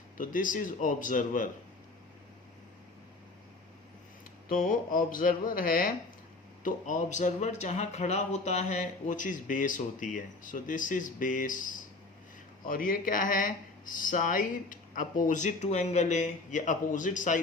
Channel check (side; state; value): right; quieter; 3.3 dB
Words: तो दिस इज ऑब्जर्वर। तो ऑब्जर्वर है, तो ऑब्जर्वर जहाँ खड़ा होता है वो चीज़ बेस होती है, सो दिस इज बेस। और ये क्या है, side opposite to angle A, ये अपोजिट